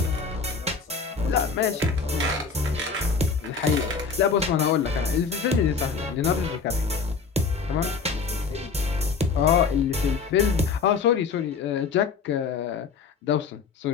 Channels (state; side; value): quieter; right; 5.2 dB